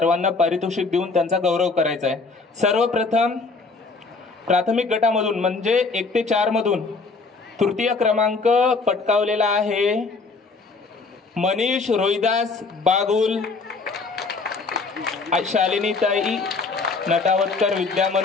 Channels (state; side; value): quieter; right; 4.1 dB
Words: पारितोषिक देऊन त्यांचा गौरव करायचा आहे. सर्वप्रथम प्राथमिक गटामधून म्हणजे 1 ते 4 मधून तृतीय क्रमांक पटकावलेला आहे मनीष रोहिदास बागुल, शालिनीताई नटावतकर विद्या